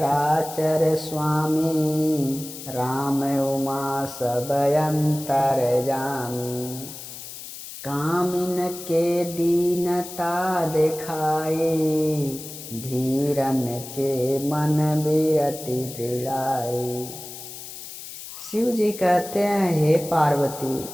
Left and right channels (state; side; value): noise; left; hiss, 12 dB below the sound